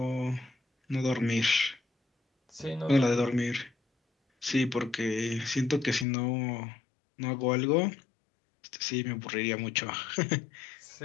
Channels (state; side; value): drops out; right; at 6.1 s